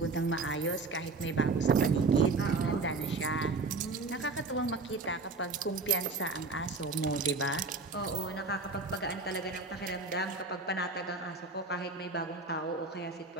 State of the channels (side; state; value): left; quieter; 3.9 dB